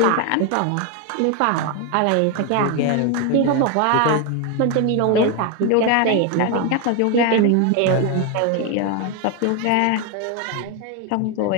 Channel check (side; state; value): both; different; correlation 0.01